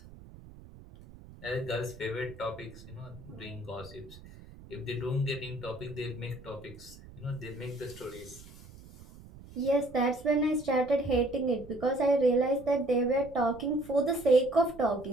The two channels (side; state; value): right; noise; rumble, 19 dB below the sound